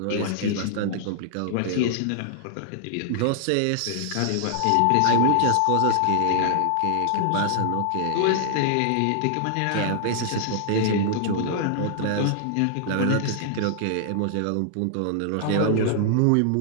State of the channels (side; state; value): both; different; correlation -0.01